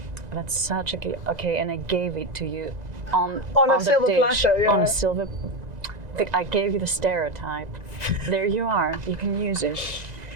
That's such a okay, and I gave it to you on a the silver dish, platter. Yeah. On a silver. I gave you the stereotype. There you are. You can use it.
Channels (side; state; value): left; late; 2.0 ms